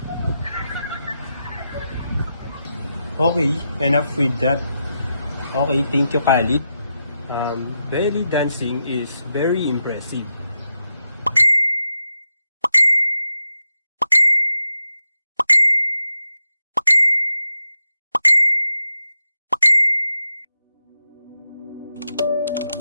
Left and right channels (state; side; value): inverted; both; correlation -0.87